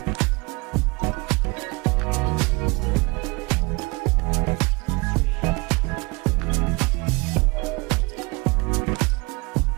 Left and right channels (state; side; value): quieter; left; 26.2 dB